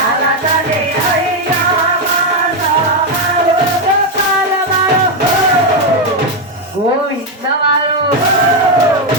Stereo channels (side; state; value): both; normal; correlation 0.05